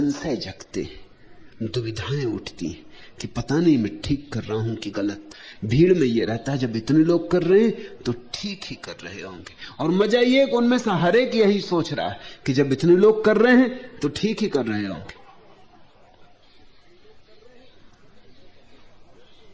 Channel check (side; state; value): both; identical; correlation 1.00